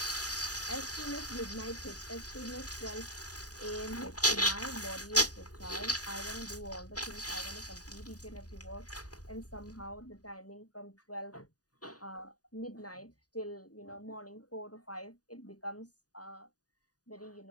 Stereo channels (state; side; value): late; right; 0.68 ms